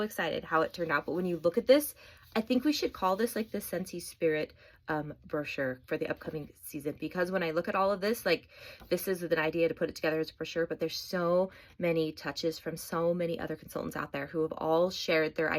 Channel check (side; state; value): both; identical; correlation 1.00